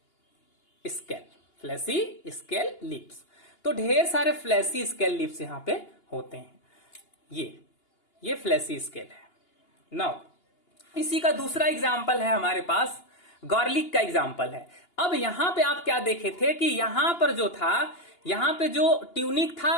scale, fleshy scale leaves. तो ढेर सारे फ्लैसी स्केल लीव्स यहां पे होते हैं। ये फ्लैसी स्केल है। नाउ इसी का दूसरा एग्जाम्पल है हमारे पास, गार्लिक का एग्जाम्पल है। अब यहां पे आप क्या देखे थे कि यहां पर जो था, यहां पे जो ट्यूनिक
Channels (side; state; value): right; late; 2.8 ms